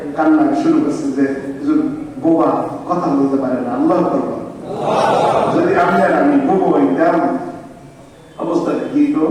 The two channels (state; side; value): identical; both; correlation 1.00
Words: কান্না শুরু করছে যে হুজুর বোমা কথা বলতে পারে না, আল্লাহ করবো যদি আমি আর আমি বোমা হইতাম অবস্থাটা কি তো